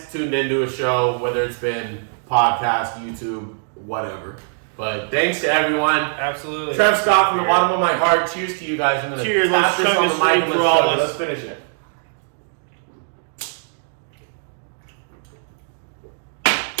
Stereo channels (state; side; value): silent; left; digital silence